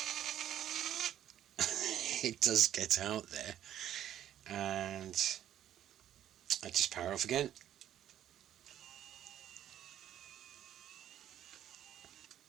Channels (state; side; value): quieter; left; 11.2 dB